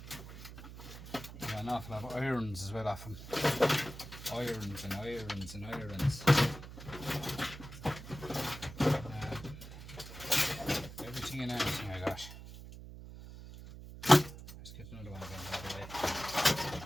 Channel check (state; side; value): noise; right; hum, 13 dB below the sound